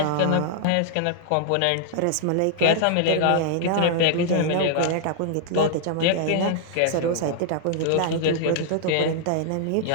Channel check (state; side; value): different; both; correlation -0.01